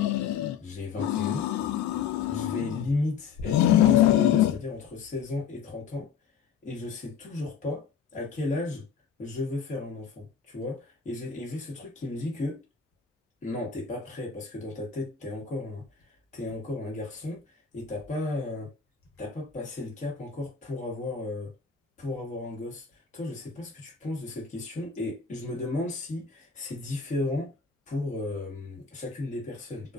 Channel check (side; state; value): right; quieter; 6.8 dB